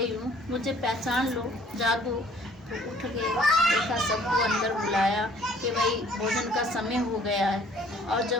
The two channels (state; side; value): normal; both; correlation 0.57